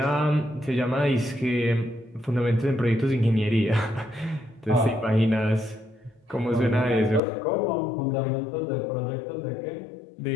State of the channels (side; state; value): right; drops out; at 7.2 s